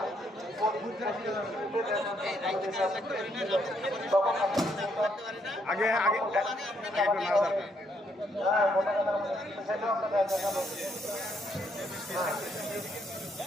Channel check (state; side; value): normal; both; correlation 0.73